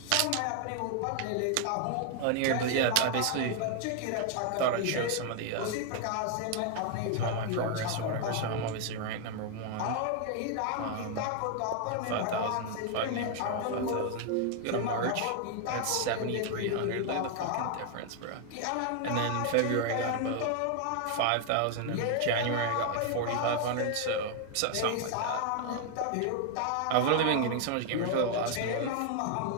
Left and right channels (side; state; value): both; different; correlation 0.00